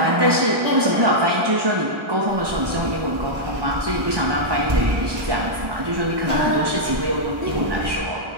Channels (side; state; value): left; late; 1.2 ms